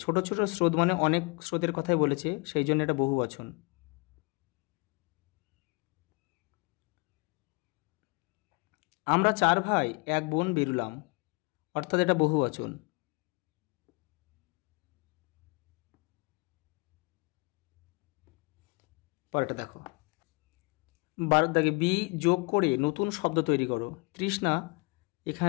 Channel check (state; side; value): quieter; right; 28.9 dB